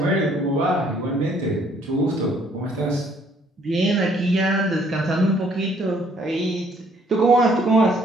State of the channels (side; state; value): both; normal; correlation 0.63